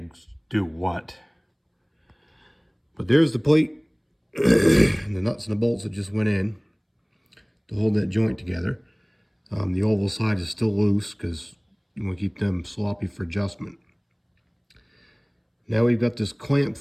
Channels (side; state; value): both; identical; correlation 1.00